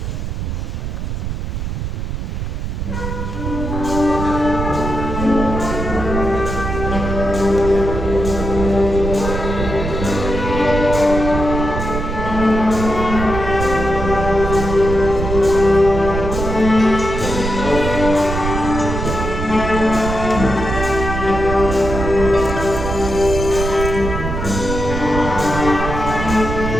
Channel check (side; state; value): right; noise; rumble, 4 dB below the sound